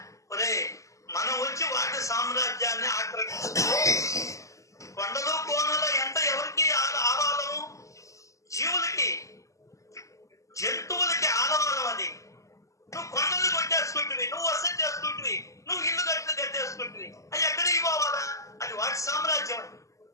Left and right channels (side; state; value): right; late; 0.16 ms